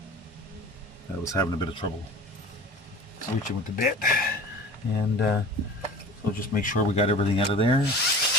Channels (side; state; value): both; normal; correlation 0.39